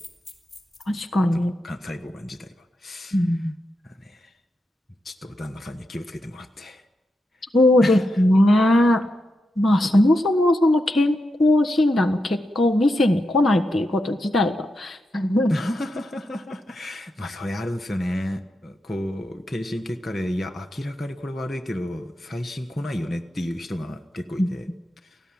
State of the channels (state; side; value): normal; both; correlation 0.86